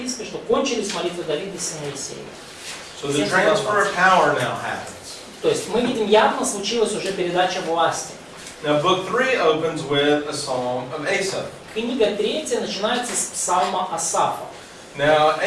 что кончились молитвы Давида сына Иисея. So the transfer of power now happens. То есть мы видим, явно случилась уже передача власти. Now book 3 opens with a psalm of Asaph. Книга 3 начинается с псалма Асафа. Now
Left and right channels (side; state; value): both; identical; correlation 1.00